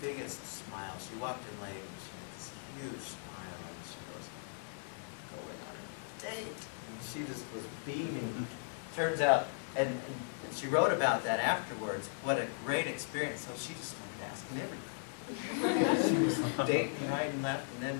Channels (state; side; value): silent; right; 53 dB below the other